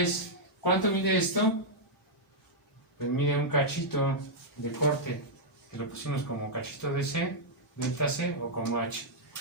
¿cuánto mide esto? Pues mide un cachito de corte, que lo pusimos como cachito de C, delta C, o como H,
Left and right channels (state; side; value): normal; both; correlation -0.05